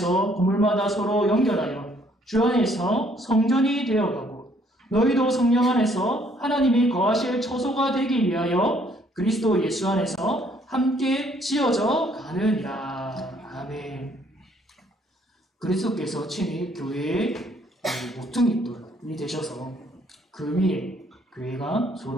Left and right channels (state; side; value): normal; both; correlation 0.65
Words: 건물마다 서로 연결하여 주 안에서 성전이 되어가고 너희도 성령 안에서 하나님이 거하실 처소가 되기 위하여 그리스도 예수 안에서 함께 지어져 가느니라. 아멘. 그리스도께서 친히 교회의 모퉁이 돌이 되셔서 그 위에 교회가